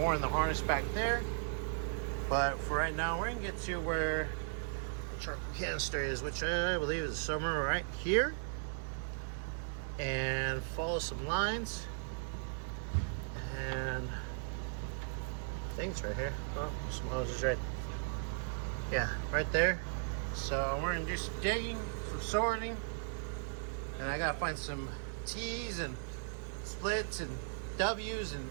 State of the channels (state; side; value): silent; left; digital silence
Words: in the harness back there. But for right now, we're gonna get to where the charcoal canister is, which I believe is somewhere right here, and follow some lines. And I think it's right here. Oh, some hoses right. Yeah, right there. So we're gonna do some digging, some sorting, and I gotta find some T's and splits and W's and